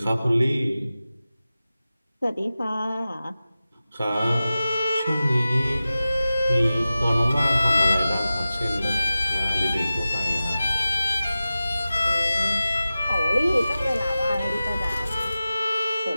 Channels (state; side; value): inverted; both; correlation -0.95